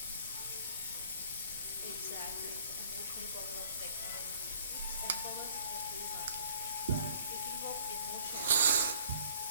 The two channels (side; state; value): both; inverted; correlation -0.55